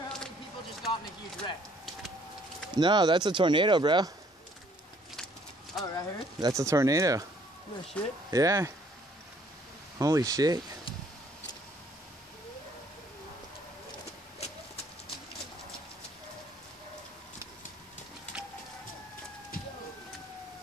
how many people just got in a huge wreck. No, that's a tornado, bro. Oh, right here? That's a tornado. No shit. Yeah. Holy shit.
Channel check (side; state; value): both; normal; correlation 0.62